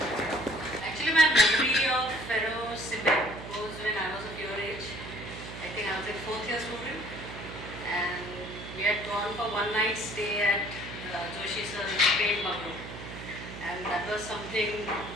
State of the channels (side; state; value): right; noise; hum, 11 dB below the sound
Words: Actually, my memory of Ferrocement was when I was of your age. I think I was a fourth year student, and we had gone for one night stay at Joshi Sir's paint bungalow, and that was something